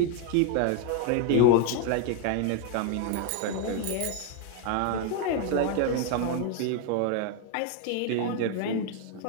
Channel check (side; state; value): both; different; correlation 0.00